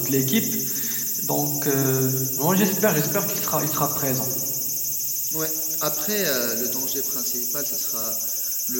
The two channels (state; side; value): identical; both; correlation 1.00